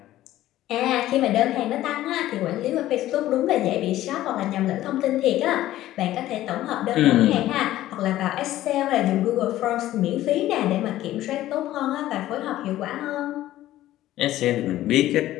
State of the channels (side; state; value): right; quieter; 14.4 dB